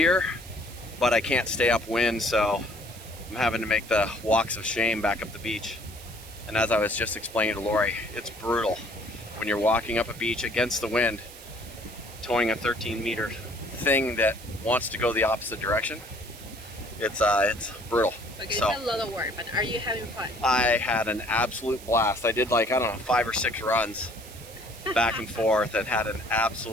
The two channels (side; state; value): right; noise; hiss, 17 dB below the sound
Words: but I can't stay upwind, so I'm having to make the walks of shame back up the beach. And as I was just explaining to Lori, it's brutal when you're walking up a beach against the wind, towing a 13-meter thing that wants to go the opposite direction. It's brutal. Okay, So, it's a lot of work, but are you having fun? I had an absolute blast. I did like, I don't know, 5 or 6 runs back and forth and had an